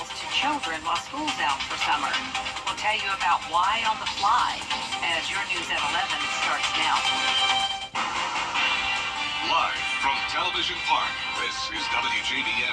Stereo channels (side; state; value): both; identical; correlation 1.00